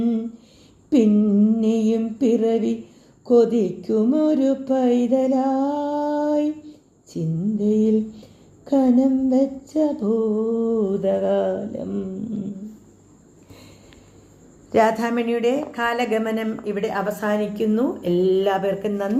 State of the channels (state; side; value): identical; both; correlation 1.00